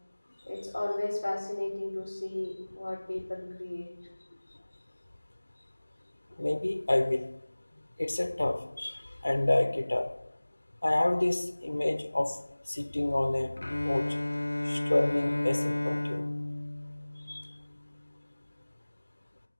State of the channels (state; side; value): inverted; both; correlation -1.00